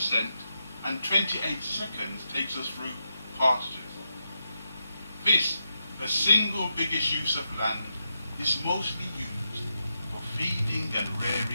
and 28 seconds takes us through pastures. This, the single biggest use of land, is mostly used for feeding and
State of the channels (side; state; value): both; inverted; correlation -0.85